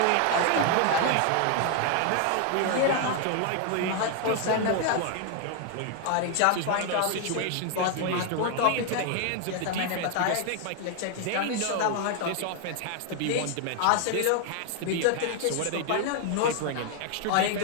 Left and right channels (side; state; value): both; different; correlation 0.00